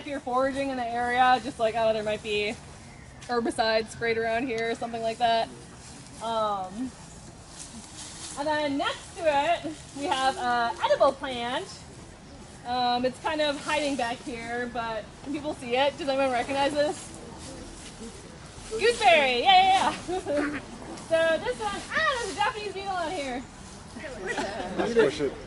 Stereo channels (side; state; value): both; identical; correlation 1.00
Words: you're foraging in the area, just like, oh, there might be herbicides sprayed around here or something like that. And then next to it, we have an edible plant. It's kind of hiding back here, but can people see it? Does anyone recognize this? Gooseberry, yeah. So this one, there's a Japanese beetle on here. Let's push it.